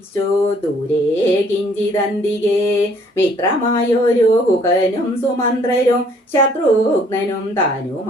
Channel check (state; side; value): normal; both; correlation 0.61